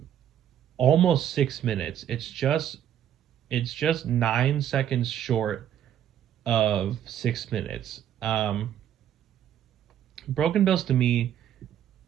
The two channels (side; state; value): left; quieter; 10.4 dB